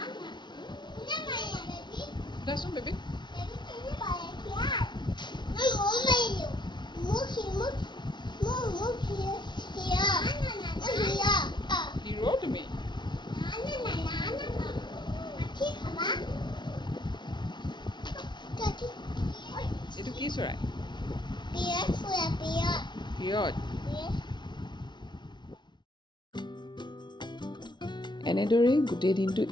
দেচোন বেবী। হিৰো তুমি। এইটো কি চৰাই? পিয়ত। এনেদৰেই গোটেই দিনটো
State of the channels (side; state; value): right; late; 0.22 ms